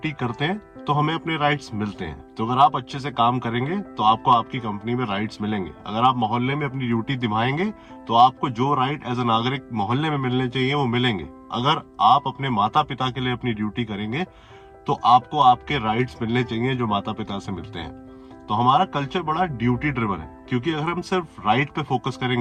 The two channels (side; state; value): both; identical; correlation 1.00